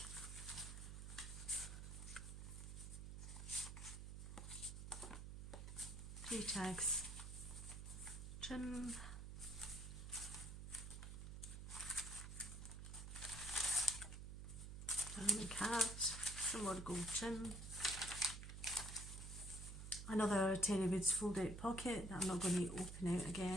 Three tags, trim. Diamond card, some more gold trim. Another Terry Woods fold out pocket that I'm not going to open out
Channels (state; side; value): noise; right; hum, 8 dB below the sound